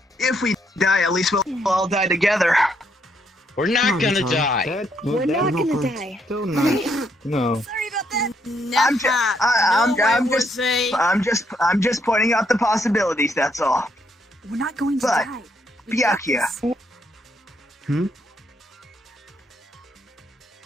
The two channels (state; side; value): normal; both; correlation 0.74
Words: If we die, at least we'll all die together. We're not gonna die. We're not gonna die. Don't know. No. Sorry about that. I'm just pointing out the possibilities. That's all. We're not going to But, die. Byakuya.